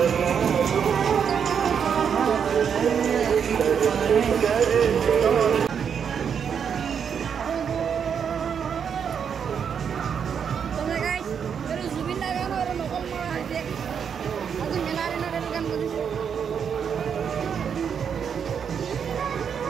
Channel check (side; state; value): left; quieter; 7.3 dB